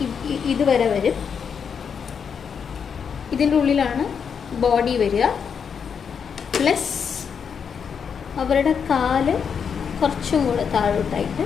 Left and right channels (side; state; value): right; quieter; 6.8 dB